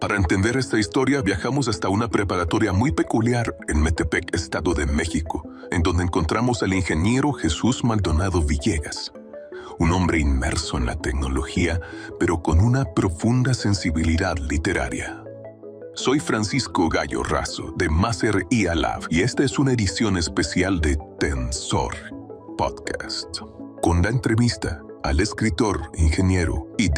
entender esta historia, viajamos hasta una preparatoria muy peculiar en Metepec, Estado de México, en donde encontramos al ingeniero Jesús Maldonado Villegas, un hombre inmerso en la tecnología, pero con una profunda sensibilidad literaria. Soy Francisco Gallo Razo, de Maser IA Lab, y esta es una edición especial de Tensor Podcast, con la entrevista al escritor, ingeniero y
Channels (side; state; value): both; identical; correlation 1.00